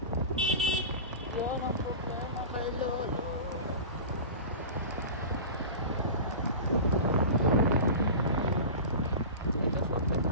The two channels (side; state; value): both; inverted; correlation -0.32